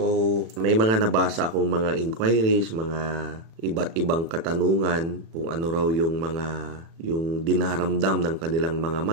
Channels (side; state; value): left; late; 36 ms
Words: may mga nabasa akong mga inquiries, mga iba't ibang katanungan kung ano raw yung dinaramdam ng kanilang mga